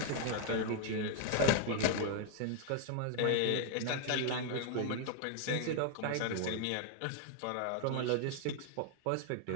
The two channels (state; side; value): different; both; correlation 0.00